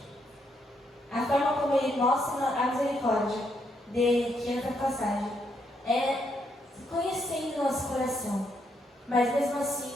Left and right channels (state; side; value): normal; both; correlation 0.76